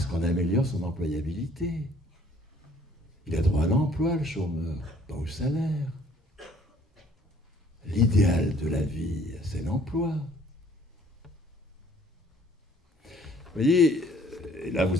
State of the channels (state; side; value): normal; both; correlation 0.58